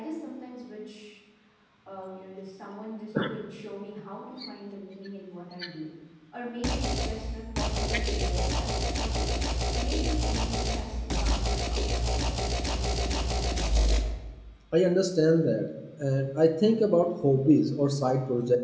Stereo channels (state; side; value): identical; both; correlation 1.00